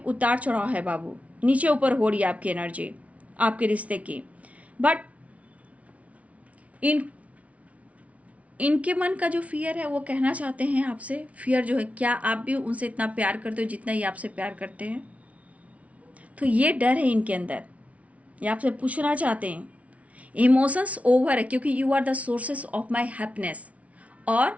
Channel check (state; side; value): late; left; 0.066 ms